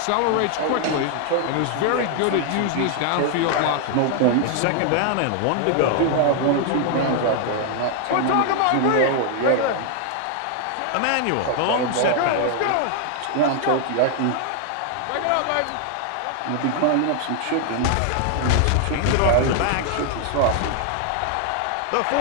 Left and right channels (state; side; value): different; both; correlation 0.00